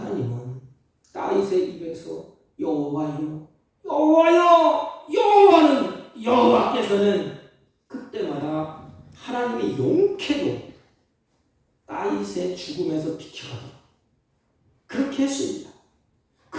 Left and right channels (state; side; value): identical; both; correlation 1.00